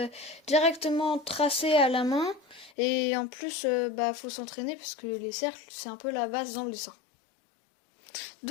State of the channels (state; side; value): drops out; right; at 2.7 s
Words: directement tracé à la main. Et en plus, faut s'entraîner parce que les cercles, c'est un peu la base dans le dessin.